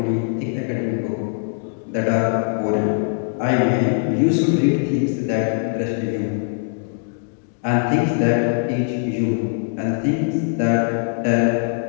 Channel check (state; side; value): silent; right; digital silence